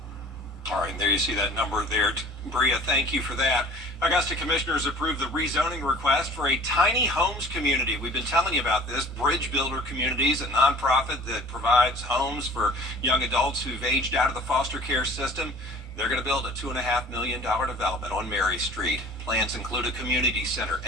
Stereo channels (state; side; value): normal; both; correlation 0.47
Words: All right, and there you see that number there. Bria, thank you for that. Augusta commissioners approved the rezoning request for a tiny homes community. We've been telling you about this. Bridge Builder Communities, a nonprofit that provides homes for young adults who've aged out of the foster care system. They're going to build a $2.5 million development on Mary Street. Plans include a community center